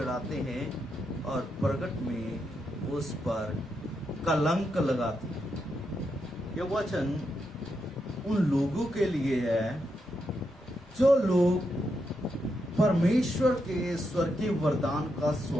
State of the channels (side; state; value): both; normal; correlation 0.83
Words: हैं और प्रगट में उस पर कलंक लगाती। यह वचन उन लोगों के लिए है जो लोग परमेश्वर के स्वर्गीय वरदान का